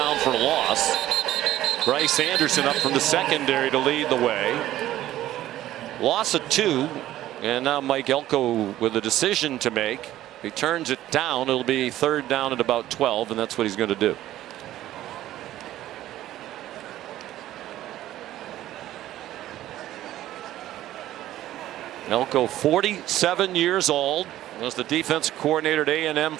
for a loss. Bryce Anderson up from the secondary to lead the way. Loss of 2. And now Mike Elko with a decision to make. He turns it down. It'll be third down at about 12, and that's what he's going to do. Elko, 47 years old, was the defensive coordinator at A&M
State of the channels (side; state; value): left; quieter; 13.9 dB